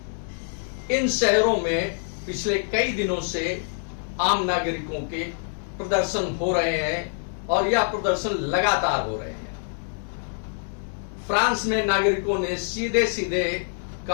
इन शहरों में पिछले कई दिनों से आम नागरिकों के प्रदर्शन हो रहे हैं और यह प्रदर्शन लगातार हो रहे हैं। फ्रांस में नागरिकों ने सीधे सीधे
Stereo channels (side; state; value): right; silent; digital silence